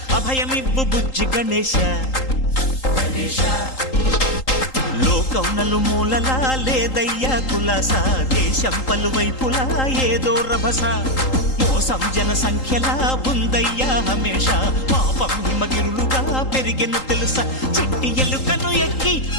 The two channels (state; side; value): late; right; 3.8 ms